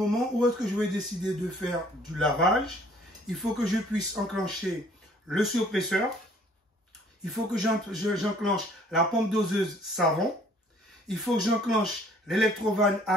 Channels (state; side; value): normal; both; correlation 0.58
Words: où est-ce que je vais décider de faire du lavage, il faut que je puisse enclencher le surpresseur. Il faut que j'enclenche la pompe doseuse savon. Il faut que j'enclenche l'électrovanne